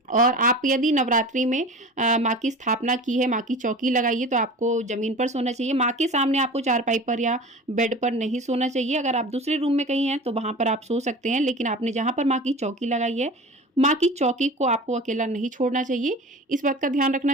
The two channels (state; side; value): normal; both; correlation 0.36